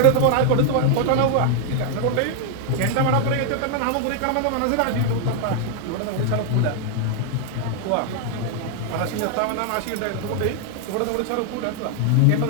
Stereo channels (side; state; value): both; different; correlation 0.00